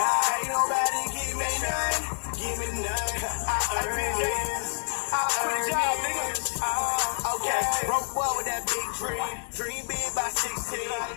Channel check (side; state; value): right; silent; digital silence